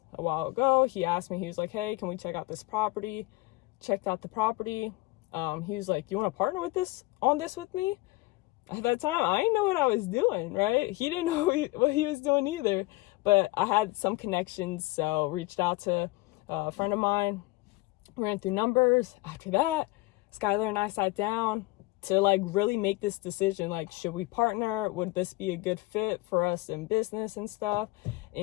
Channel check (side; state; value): right; quieter; 20.7 dB